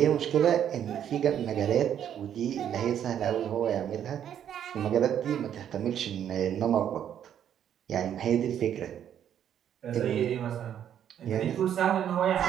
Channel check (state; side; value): quieter; left; 9.7 dB